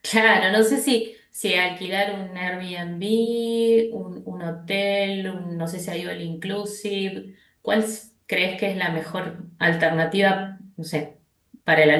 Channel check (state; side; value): identical; both; correlation 1.00